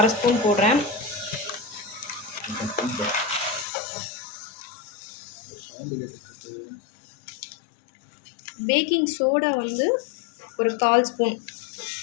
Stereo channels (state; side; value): drops out; right; at 3.7 s